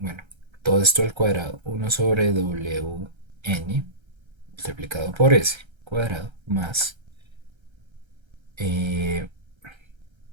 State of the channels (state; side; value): late; left; 1.3 ms